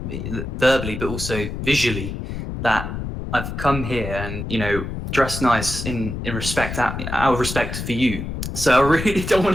verbally but also visually, that I've come here and dressed nice in respect, out of respect for you. So I really don't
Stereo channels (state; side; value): noise; left; rumble, 6 dB below the sound